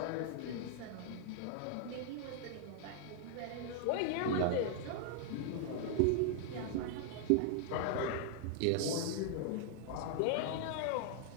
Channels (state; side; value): different; both; correlation 0.00